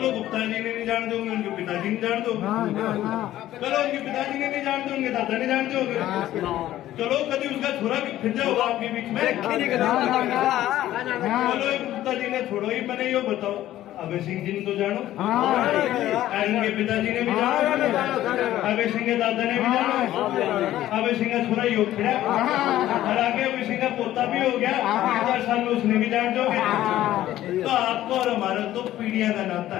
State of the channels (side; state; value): right; quieter; 13.7 dB